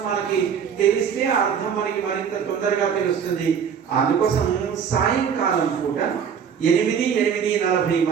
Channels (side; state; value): left; quieter; 7.4 dB